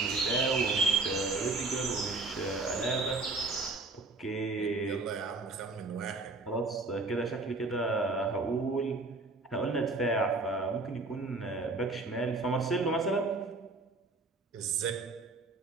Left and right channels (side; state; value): left; quieter; 3.4 dB